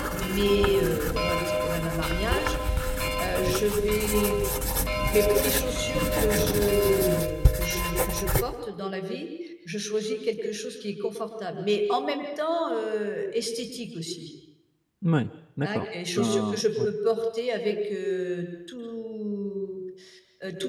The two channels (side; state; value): both; identical; correlation 1.00